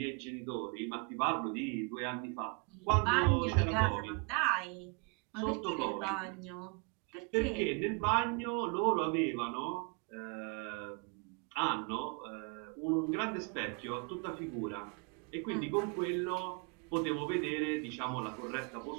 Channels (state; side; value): quieter; left; 34.0 dB